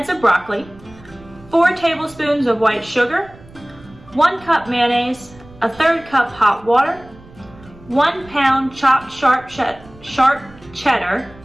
of broccoli, 4 tablespoons of white sugar, 1 cup mayonnaise, a 1/3 cup hot water, 1 pound chopped sharp cheddar,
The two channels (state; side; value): noise; right; rumble, 23 dB below the sound